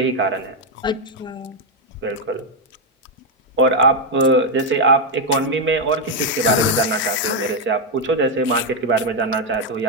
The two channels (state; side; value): normal; both; correlation 0.02